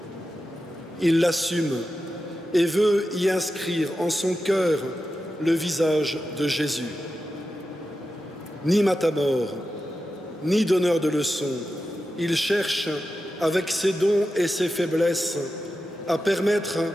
Il l'assume et veut y inscrire en son cœur le visage de Jésus. Ni matamore, ni donneur de leçons, il cherche, avec ses dons et ses faiblesses, à permettre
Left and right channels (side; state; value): both; normal; correlation 0.91